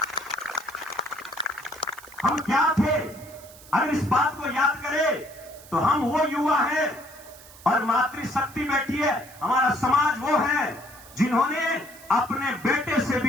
हम क्या थे, अगर इस बात को याद करें तो हम वो युवा हैं और मातृशक्ति बैठी है, हमारा समाज वो है जिन्होंने अपने बेटे से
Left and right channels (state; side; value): noise; right; hiss, 20 dB below the sound